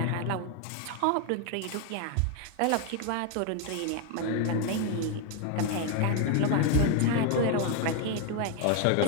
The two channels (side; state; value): both; different; correlation 0.01